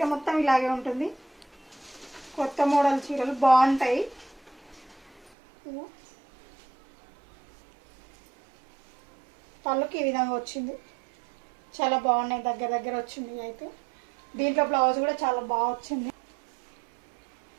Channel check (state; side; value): drops out; left; at 5.3 s